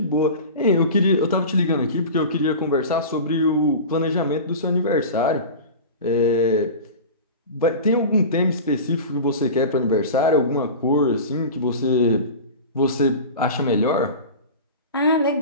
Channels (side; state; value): both; inverted; correlation -0.32